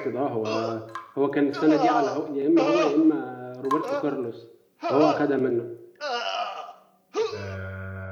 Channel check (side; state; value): both; identical; correlation 1.00